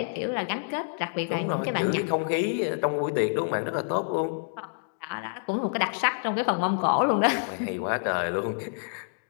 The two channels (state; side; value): silent; right; digital silence